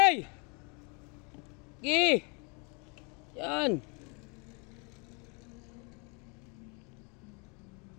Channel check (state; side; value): quieter; right; 32.9 dB